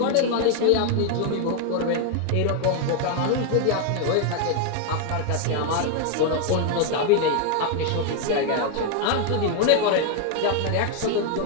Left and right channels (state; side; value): different; both; correlation 0.01